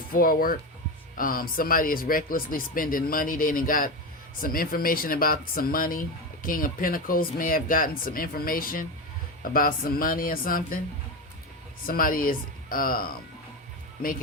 forward. Somebody is recklessly spending money. They done got some information about some money. King of Pentacles may have gotten some information about some money or something. Somebody is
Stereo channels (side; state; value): both; normal; correlation 0.18